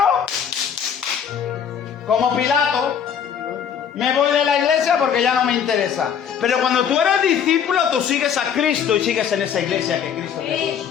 como Pilato, me voy de la iglesia porque ya no me interesa. Pero cuando tú eres discípulo, tú sigues a Cristo y sigues en esa iglesia que Cristo te puso.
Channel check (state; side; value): quieter; right; 8.0 dB